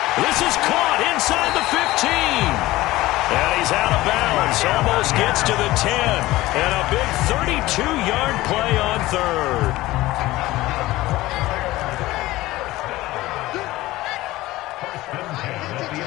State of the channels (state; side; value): quieter; right; 17.8 dB